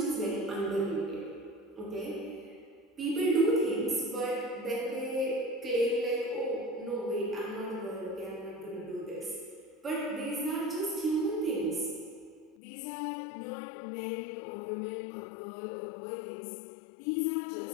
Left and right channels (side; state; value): right; drops out; at 12.6 s